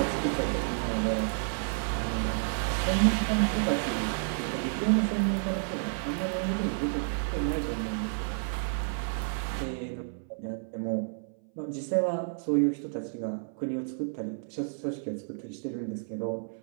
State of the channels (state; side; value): silent; left; 57 dB below the other